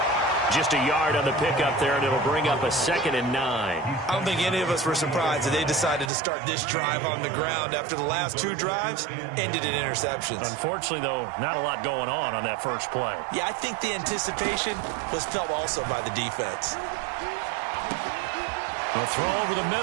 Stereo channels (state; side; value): drops out; left; at 6.1 s